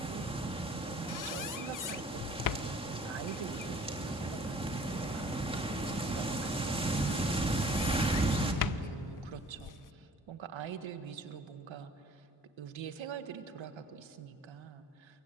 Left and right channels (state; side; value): normal; both; correlation 0.51